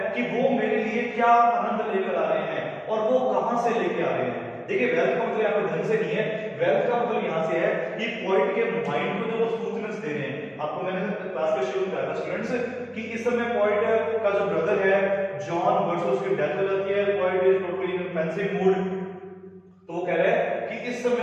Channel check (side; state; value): both; identical; correlation 1.00